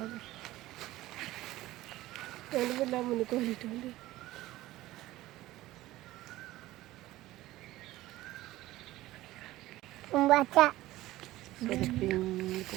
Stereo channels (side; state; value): left; quieter; 16.7 dB